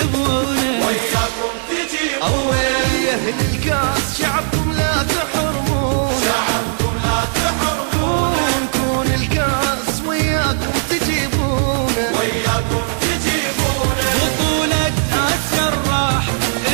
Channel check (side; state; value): left; silent; 66 dB below the other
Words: أول يا أهل الكاس شعبكم لا تحرمون شعبكم لا تحرمون كون الكاس وياكم تجيبونه بطولة آسيا الراح